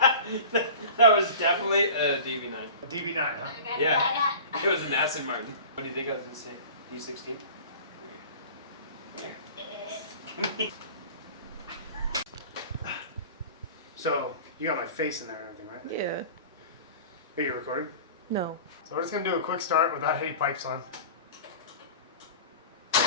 that was definitely a DB9. A DB9, huh? Yeah, it was an Aston Martin. What do you think I was gonna say? D16. So, you got my face in there and everything, right? Yeah. Are you recording? No. So we're just gonna do a quick start without any pipes on.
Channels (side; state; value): both; inverted; correlation -0.38